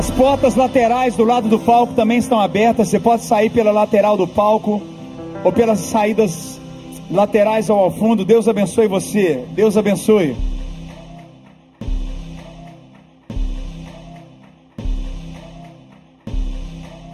portas laterais do lado do palco também estão abertas. Você pode sair pela lateral do palco ou pelas saídas laterais ao fundo. Deus abençoe você. Deus abençoe.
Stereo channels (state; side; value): identical; both; correlation 1.00